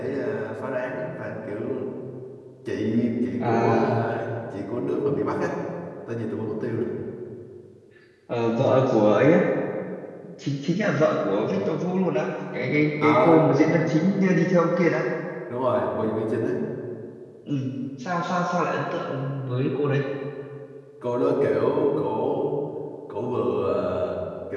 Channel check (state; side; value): identical; both; correlation 1.00